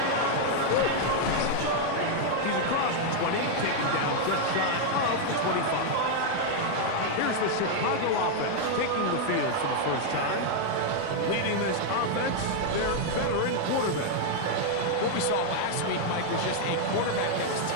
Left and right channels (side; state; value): both; different; correlation 0.00